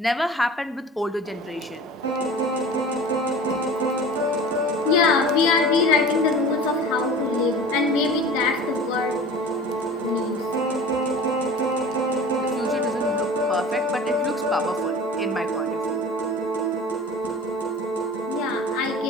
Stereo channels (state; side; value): normal; both; correlation 0.39